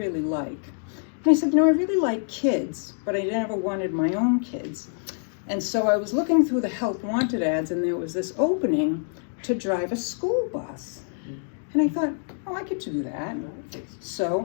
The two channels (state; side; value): silent; right; digital silence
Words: like? And I said, I really like kids, but I never wanted my own kids. And so I was looking through the Help Wanted ads, and there was this opening to drive a school bus. And I thought, oh, I could do that.